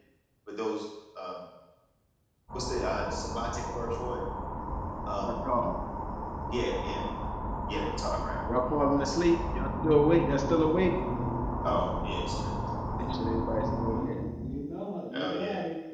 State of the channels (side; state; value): both; identical; correlation 1.00